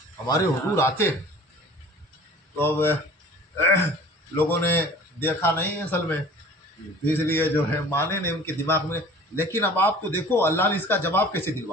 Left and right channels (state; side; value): normal; both; correlation 0.45